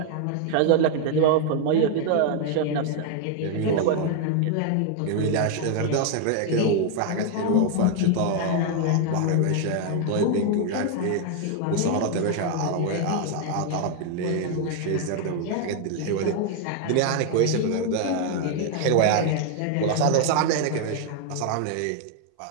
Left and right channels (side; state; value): both; different; correlation 0.00